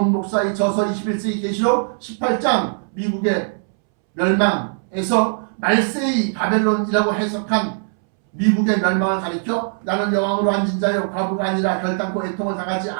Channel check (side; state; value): left; silent; 65 dB below the other